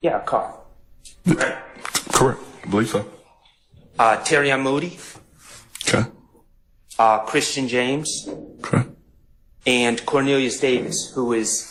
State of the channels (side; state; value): both; identical; correlation 1.00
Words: car. Right? Correct. I believe so. Terry Moody. Okay. Christian James. Okay. And Cornelius Davis, who is